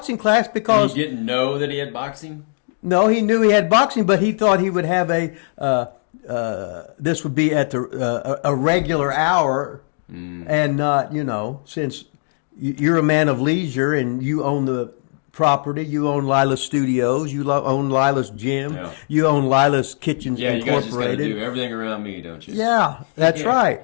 class because... And he didn't know that he had boxing? No, he knew he had boxing, but he thought he would have this would be at a regular hour and not, since you're a man of leisure and you own the property, you own Lila's Studios, you own Lila's Gym, you own Lila's Kitchens. Yeah, you guys just got to do everything around me, don't you? Yeah, that's right.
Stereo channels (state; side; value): silent; right; digital silence